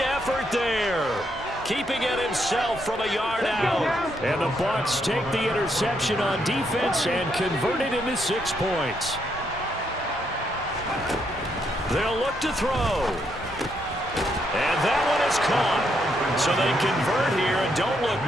effort there. Keeping it himself from a yard out. And the Bucs take the interception on defense and convert it into 6 points. They'll look to throw. And that one is caught. So they convert here, and don't look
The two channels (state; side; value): normal; both; correlation 0.76